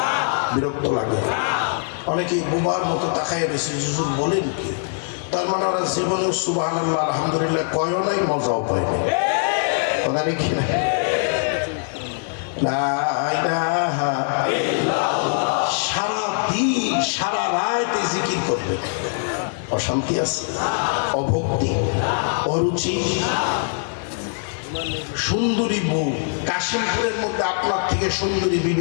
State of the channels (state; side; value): silent; right; 56 dB below the other